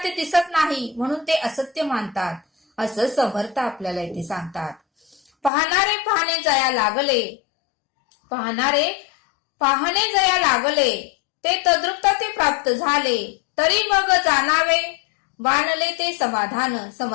ते दिसत नाही म्हणून ते असत्य मानतात असं समर्थ आपल्याला इथे सांगतात. पाहणारे पाहणे जया लागले ते तद्रुपता ते प्राप्त झाले तरी मग जाणावे बाणले ते समाधान.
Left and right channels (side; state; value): right; drops out; at 5.5 s